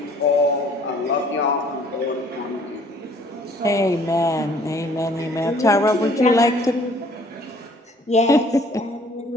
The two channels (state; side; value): normal; both; correlation 0.57